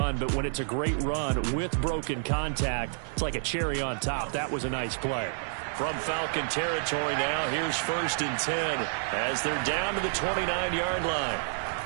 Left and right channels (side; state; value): left; silent; 58 dB below the other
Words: but when it's a great run with broken contact, it's like a cherry on top. That was a nice play. From Falcon territory now, here's 1st and 10 as they're down to the 29-yard line.